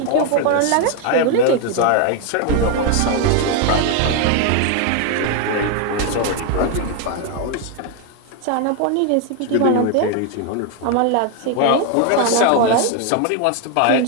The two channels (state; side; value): different; both; correlation 0.01